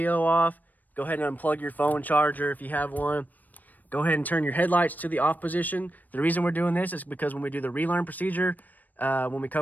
off. Go ahead and unplug your phone charger if you have one. Go ahead and turn your headlights to the off position. The reason we're doing this is because when we do the relearn procedure, when we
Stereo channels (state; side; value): late; right; 0.084 ms